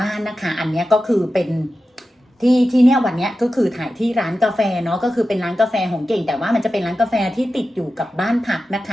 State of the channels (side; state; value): both; normal; correlation 0.92